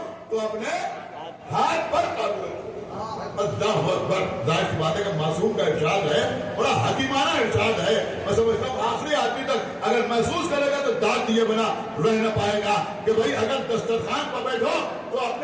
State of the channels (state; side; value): identical; both; correlation 1.00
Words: تو اپنے ہاتھ پر قابو رکھو. اللہ اکبر. ظاہر سی بات ہے کہ معصوم کا ارشاد ہے, بڑا حکیمانہ ارشاد ہے. میں سمجھتا ہوں آخری آدمی تک اگر محسوس کرے گا تو داد دیے بنا رہ نہ پائے گا کہ بھائی اگر دسترخوان پر بیٹھو تو